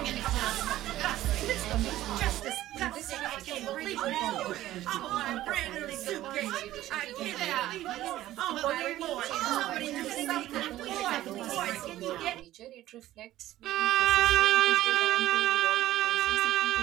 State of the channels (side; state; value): left; quieter; 14.6 dB